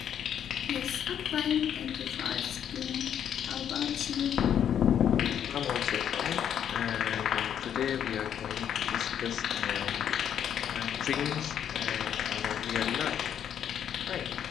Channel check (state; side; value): quieter; right; 9.2 dB